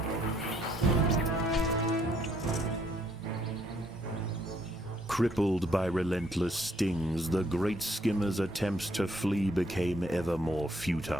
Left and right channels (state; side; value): normal; both; correlation 0.69